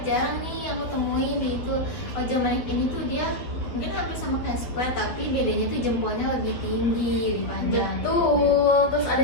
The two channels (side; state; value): right; late; 12 ms